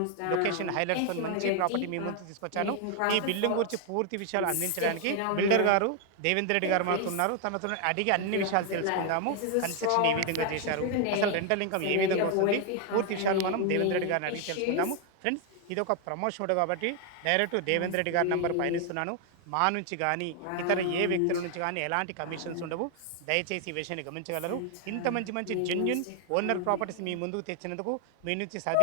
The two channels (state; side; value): different; both; correlation 0.01